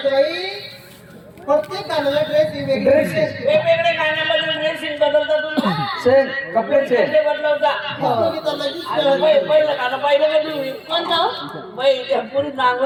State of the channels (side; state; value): both; identical; correlation 1.00